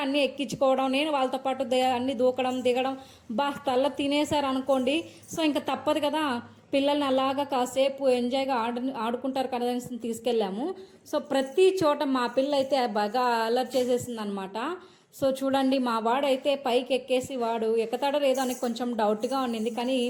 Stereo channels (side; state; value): both; identical; correlation 1.00